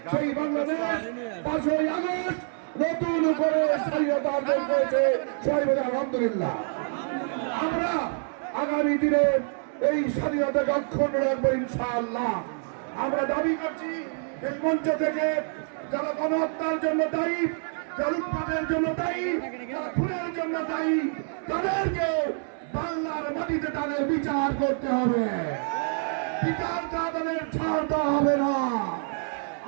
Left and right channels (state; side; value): silent; left; 60 dB below the other